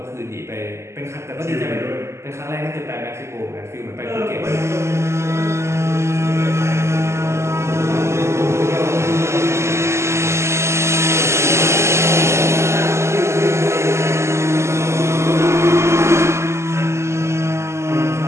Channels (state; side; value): late; left; 0.13 ms